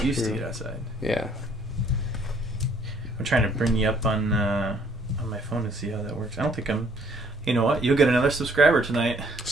to get outside. Yeah. I'm trying to bring you up on my phone to see how that works. I don't think I'm... You know what? You'll get another subscriber tonight.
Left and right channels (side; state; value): right; noise; hum, 28 dB below the sound